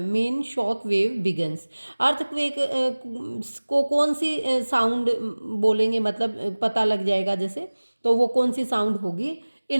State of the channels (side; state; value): both; inverted; correlation -1.00